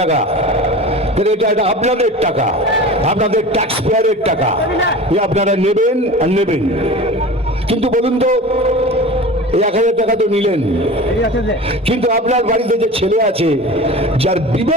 টাকা। এটা আপনাদের টাকা, আপনাদের ট্যাক্স পেয়ারের টাকা, আপনারা নেবেন আর নেবেন। কিন্তু বলুন তো, এই 1000 টাকা তো নিলেন, কিন্তু আপনার বাড়িতে যে ছেলে আছে, যার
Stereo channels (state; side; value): normal; both; correlation 0.35